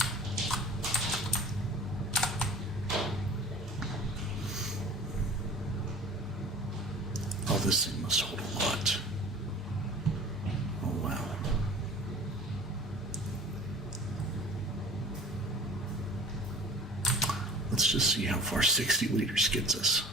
Oh, this thing must hold a lot. Oh, wow. Let's just see how far 60 liters gets us.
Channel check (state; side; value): normal; both; correlation 0.42